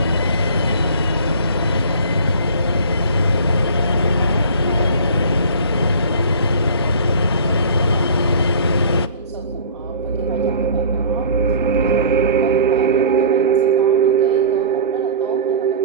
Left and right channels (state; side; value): inverted; both; correlation -0.42